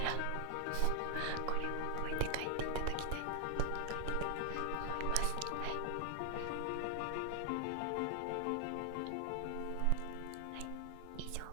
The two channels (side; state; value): both; different; correlation 0.00